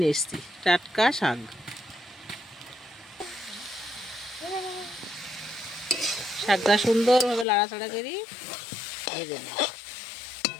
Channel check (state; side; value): drops out; right; at 7.5 s